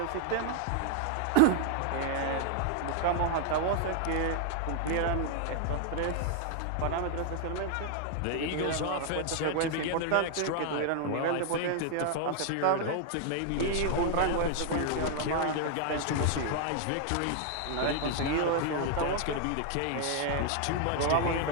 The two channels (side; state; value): both; different; correlation 0.00